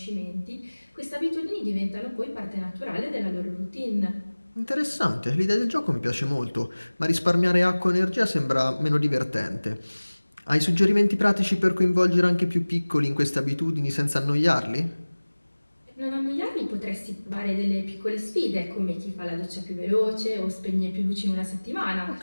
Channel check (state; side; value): inverted; both; correlation -1.00